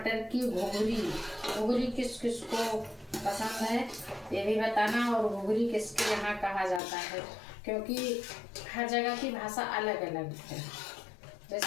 की घुघरी किस किस को पसंद है ये भी बताना, और घुघरी किसके यहाँ कहा जाता है, क्योंकि हर जगह की भाषा अलग अलग है।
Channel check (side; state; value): right; drops out; at 6.8 s